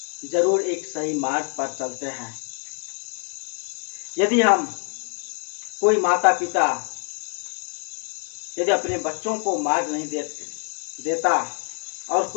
जरूर एक सही मार्ग पर चलते हैं। यदि कोई माता पिता यदि अपने बच्चों को मार्ग नहीं देता और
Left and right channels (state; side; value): quieter; right; 39.0 dB